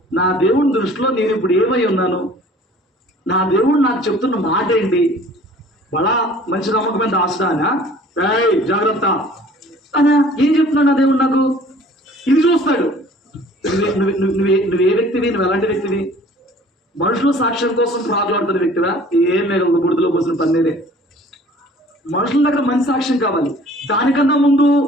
నా దేవుడి దృష్టిలో నేను ఇప్పుడు ఏమై ఉన్నాను, నా దేవుడు నాకు చెప్తున్న మాట ఏంటి, బలా మంచి నమ్మకమైన దాస్తానా, జాగ్రత్త అనా, ఏం చెప్తున్నాడు నా దేవుడు నాకు? ఇది చూస్తాడు. నువ్వే వ్యక్తివి, నువ్వు ఎలాంటి వ్యక్తివి? మనుషుల సాక్ష్యం కోసం ప్రాకులాడుతున్న వ్యక్తివా? ఏం లేదు, బుడిదలో పోసిన పన్నీరే. మనుషుల దగ్గర మంచి సాక్ష్యం కావాలి. దానికన్నా ముందు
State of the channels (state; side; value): normal; both; correlation 0.50